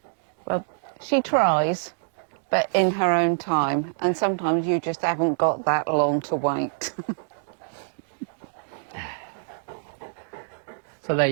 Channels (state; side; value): silent; left; digital silence